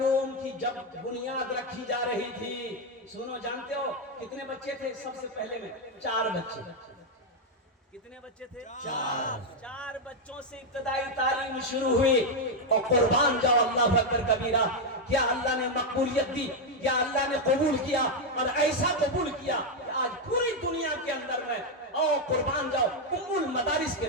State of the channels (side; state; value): both; normal; correlation 0.02